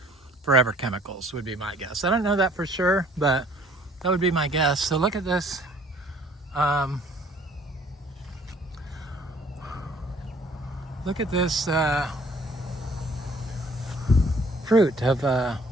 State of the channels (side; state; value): both; normal; correlation 0.57